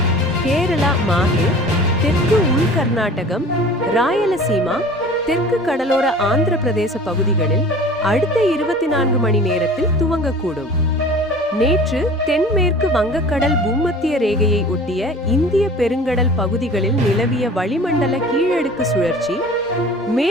கேரளா, மாஹே, தெற்கு உள் கர்நாடகம், ராயலசீமா, தெற்கு கடலோர ஆந்திர பிரதேச பகுதிகளில் அடுத்த 24 மணி நேரத்தில் துவங்கக்கூடும். நேற்று தென்மேற்கு வங்கக்கடல் பூமத்திய ரேகையை ஒட்டிய இந்திய பெருங்கடல் பகுதிகளில் நிலவிய வளிமண்டல கீழடுக்கு சுழற்சி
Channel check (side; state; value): both; normal; correlation 0.43